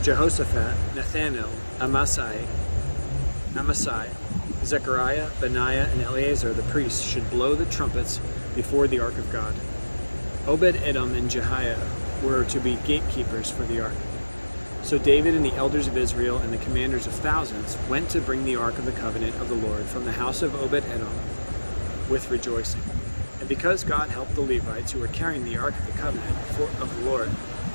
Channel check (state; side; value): inverted; both; correlation -1.00